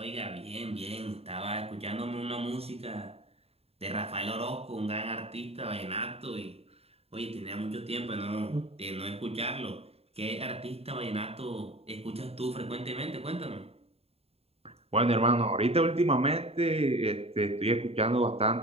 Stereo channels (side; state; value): left; late; 0.29 ms